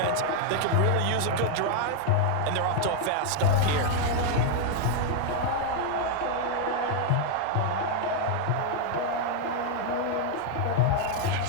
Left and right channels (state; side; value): different; both; correlation 0.00